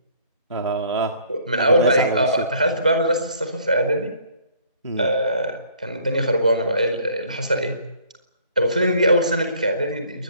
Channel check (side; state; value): both; inverted; correlation -0.58